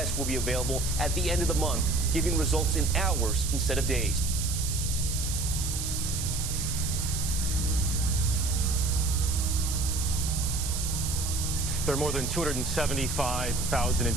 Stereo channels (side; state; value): right; noise; hiss, 4 dB below the sound